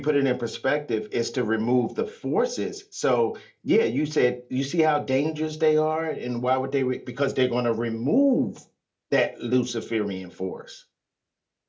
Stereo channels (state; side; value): identical; both; correlation 1.00